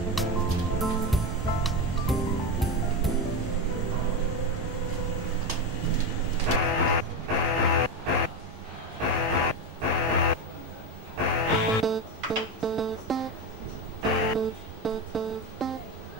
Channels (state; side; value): normal; both; correlation 0.15